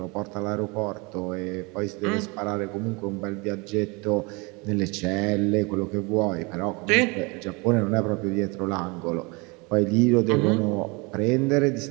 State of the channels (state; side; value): quieter; left; 27.8 dB